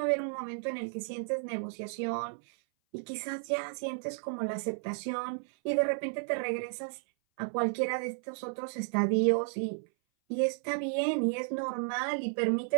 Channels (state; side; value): silent; left; 56 dB below the other